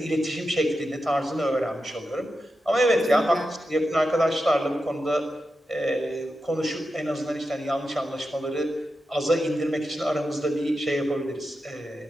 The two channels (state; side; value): normal; both; correlation 0.89